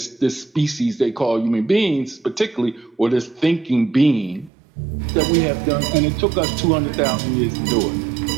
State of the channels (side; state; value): left; drops out; at 4.5 s